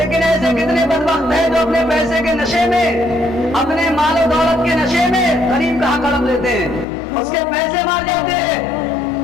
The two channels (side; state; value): right; drops out; at 6.9 s